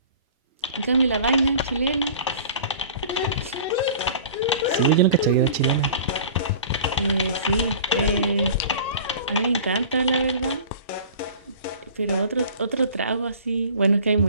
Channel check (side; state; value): both; inverted; correlation -0.43